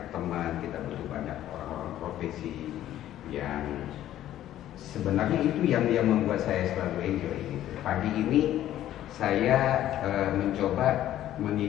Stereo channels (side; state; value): right; quieter; 12.6 dB